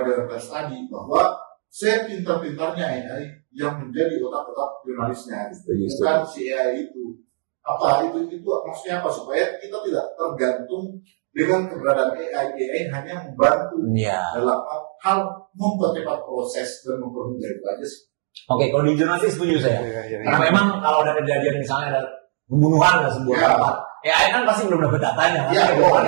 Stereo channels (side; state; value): left; silent; digital silence